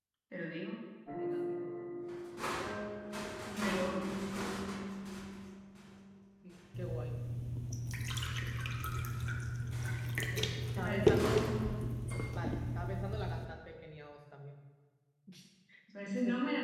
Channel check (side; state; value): both; identical; correlation 1.00